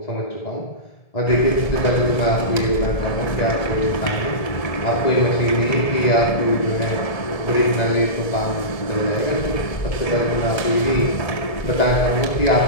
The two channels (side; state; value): right; late; 1.7 ms